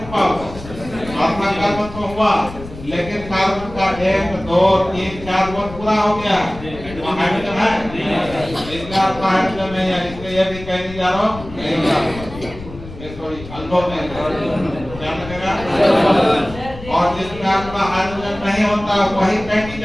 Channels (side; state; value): left; noise; rumble, 14 dB below the sound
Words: हुआ, अपना कार्बन तो हुआ लेकिन कार्बन का 1 2 3 4 बॉन्ड पूरा हो गया, हाइड्रोजन है, इसका हाइड्रोजन नहीं है, इसलिए ये भी कहीं नहीं जा रहा हूँ। सॉरी अल्फा में क्या लगेगा और जिसमें आपका हाइड्रोजन नहीं होता वही फैटी